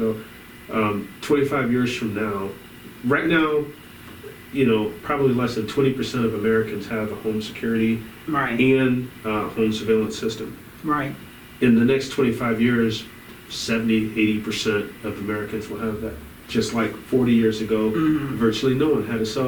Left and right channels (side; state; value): both; identical; correlation 1.00